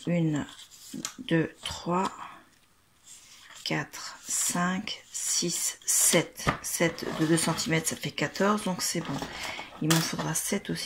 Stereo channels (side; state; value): both; identical; correlation 1.00